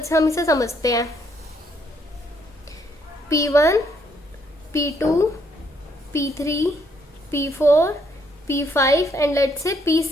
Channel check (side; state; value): both; normal; correlation 0.71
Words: से हम इसे समझते हैं। P1, P2, P3, P4, P5 and let से